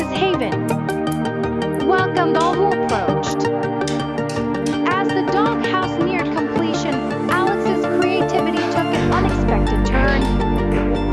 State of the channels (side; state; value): both; identical; correlation 1.00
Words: Haven. Welcomed all who approached." As the doghouse neared completion, Alex's creativity took an unexpected turn.